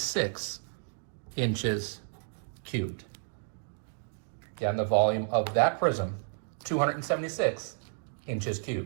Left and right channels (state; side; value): silent; left; digital silence